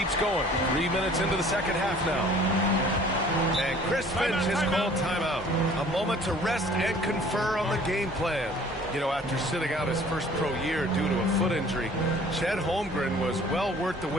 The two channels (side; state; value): both; normal; correlation 0.52